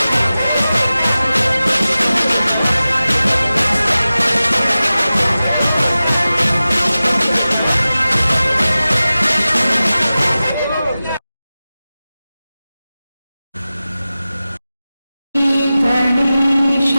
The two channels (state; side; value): inverted; both; correlation -0.96